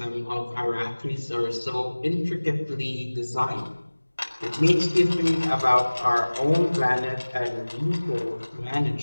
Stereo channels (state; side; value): inverted; both; correlation -1.00